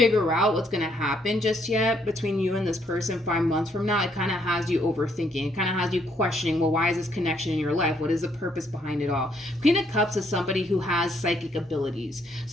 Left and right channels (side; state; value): both; normal; correlation 0.71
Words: out what's going to happen just yet between you and this person 5 months from now. It kind of has you overthinking. It kind of has you questioning, well, why is this connection in your life? What is the purpose behind it all? Queen of Cups is somebody who has psychic abilities.